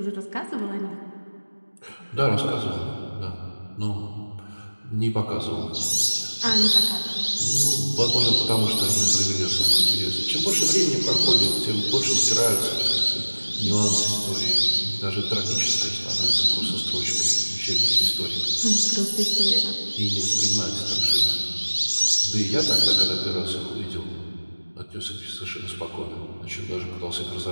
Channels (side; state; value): both; inverted; correlation -1.00